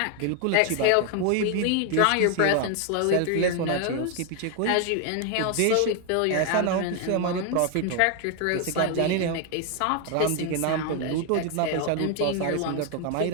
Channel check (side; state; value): both; different; correlation 0.01